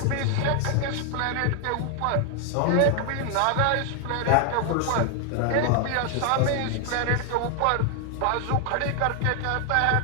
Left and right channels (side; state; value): both; different; correlation 0.00